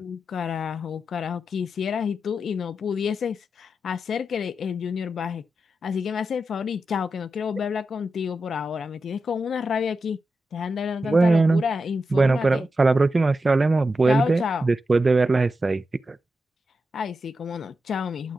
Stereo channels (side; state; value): both; normal; correlation 0.89